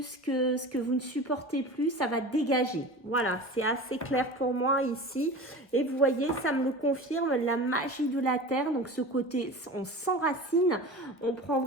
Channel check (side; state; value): right; late; 1.1 ms